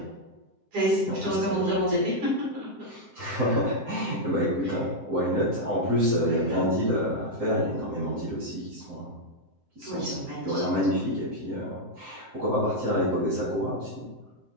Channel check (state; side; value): late; left; 7.7 ms